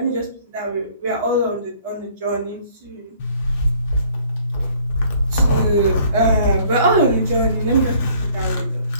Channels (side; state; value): both; inverted; correlation -0.58